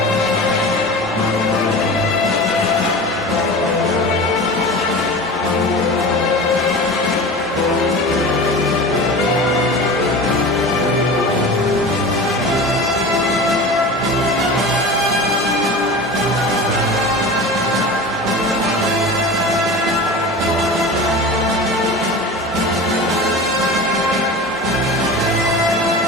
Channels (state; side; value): normal; both; correlation 0.33